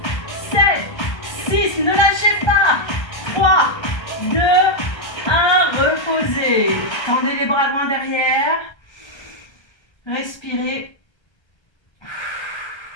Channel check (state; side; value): late; right; 1.3 ms